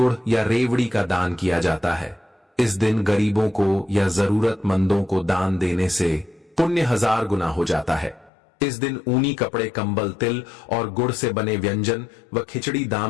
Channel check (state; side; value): drops out; right; at 8.3 s